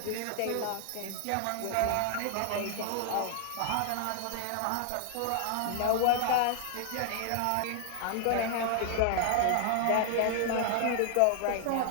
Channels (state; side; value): different; both; correlation 0.00